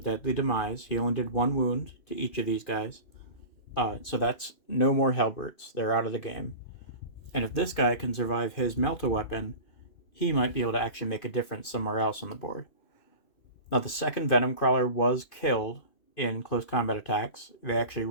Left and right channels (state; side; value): late; right; 2.5 ms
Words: deadly demise. He only did 1 wound to each of these guys. So that's no more Hellbrutes. They're out of the game. And if this guy can survive his melt-a-weapon, he might be able to actually make a difference somewhere else on the board. Now, the second Venom Crawler was killed in close combat attacks. They actually